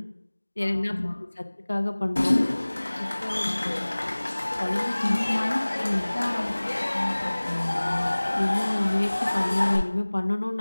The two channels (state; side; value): inverted; both; correlation -1.00